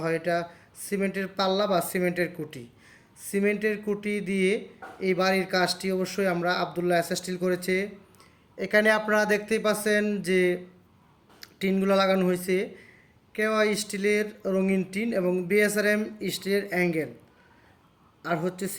হয় এটা সিমেন্টের পাল্লা বা সিমেন্টের কুটি। সিমেন্টের কুটি দিয়ে এই বাড়ির কাজটি অবশ্যই আমরা আবদুল্লাহ এস স্টিল করেছে। এখানে আপনারা দেখতেই পাচ্ছেন যে টিনগুলো লাগানো হয়েছে কেওয়া স্টিলের রঙিন টিন এবং বিএসআরএম স্টিলের অ্যাঙ্গেল, আর হচ্ছে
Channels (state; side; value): identical; both; correlation 1.00